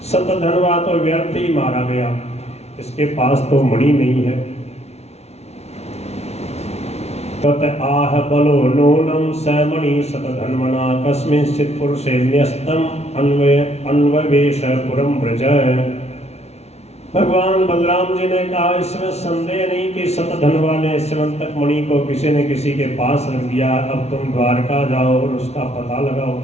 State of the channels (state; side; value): late; right; 0.31 ms